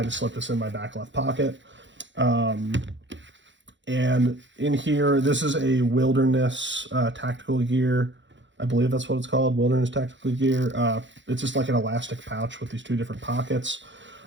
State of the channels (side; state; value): left; late; 0.54 ms